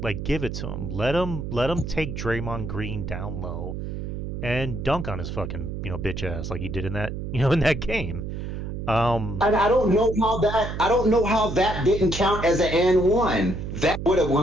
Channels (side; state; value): right; noise; hum, 6 dB below the sound